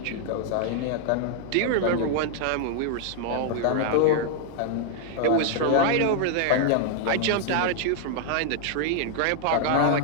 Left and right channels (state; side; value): different; both; correlation 0.00